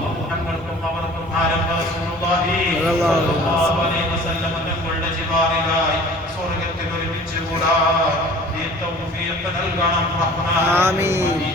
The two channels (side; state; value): left; noise; rumble, 21 dB below the sound